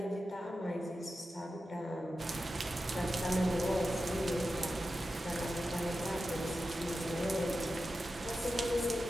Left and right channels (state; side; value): normal; both; correlation 0.91